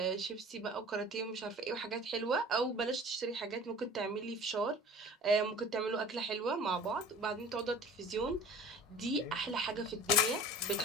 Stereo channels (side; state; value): both; normal; correlation 0.43